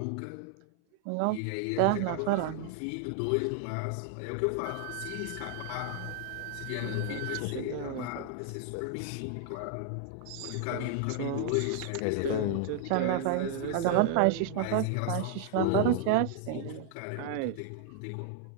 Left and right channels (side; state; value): both; different; correlation 0.00